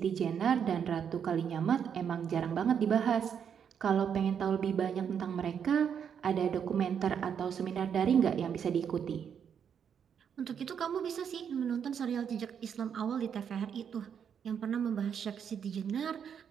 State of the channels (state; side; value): quieter; left; 7.8 dB